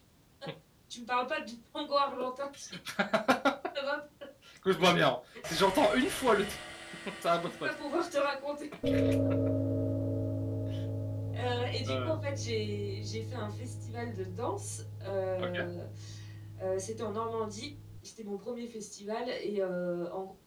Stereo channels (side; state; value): both; identical; correlation 1.00